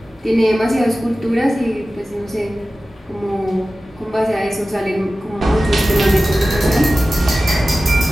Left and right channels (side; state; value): both; normal; correlation 0.95